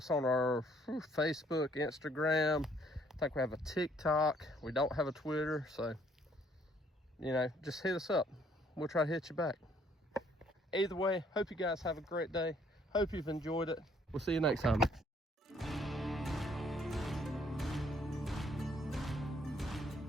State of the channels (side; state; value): both; normal; correlation 0.64